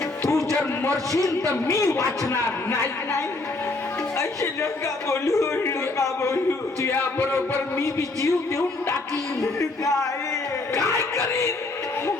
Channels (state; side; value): quieter; right; 3.2 dB